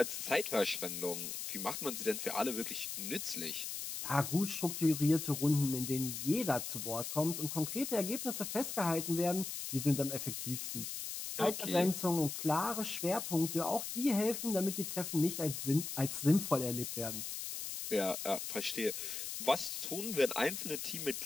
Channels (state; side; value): noise; left; hiss, 5 dB below the sound